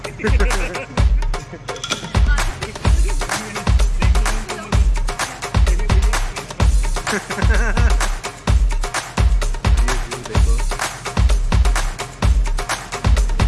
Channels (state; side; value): identical; both; correlation 1.00